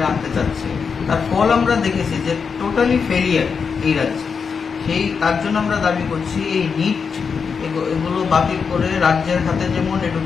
আনতে চাচ্ছে, তার ফল আমরা দেখেছি যে টোটালি ফেলিয়ার এই রাজ্যে। তার জন্য আমরা দাবি করছি এই নিট এগুলো বাতিল করে রাজ্যের হাতে যেমন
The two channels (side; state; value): right; quieter; 5.8 dB